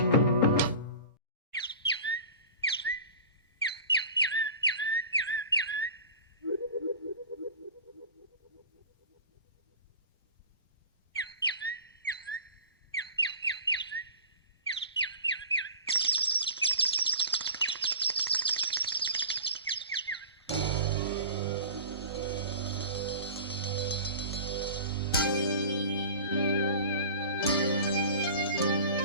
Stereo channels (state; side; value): inverted; both; correlation -0.38